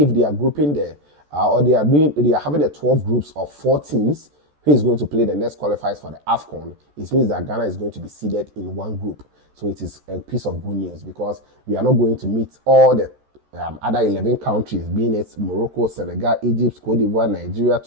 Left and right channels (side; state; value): left; late; 14 ms